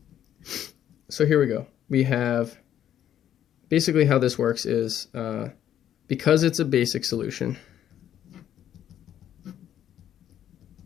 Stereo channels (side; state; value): right; quieter; 10.7 dB